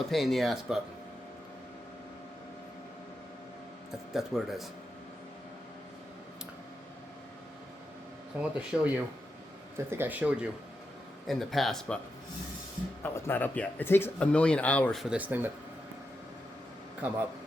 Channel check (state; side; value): normal; both; correlation 0.87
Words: pain in the ass, but that's what it is. So I want to show you, I think I showed you in the past, but oh, it's not up yet. It takes 1,000,000 hours for this thing to come up.